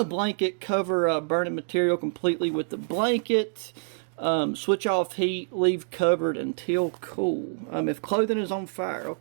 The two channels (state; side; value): silent; left; digital silence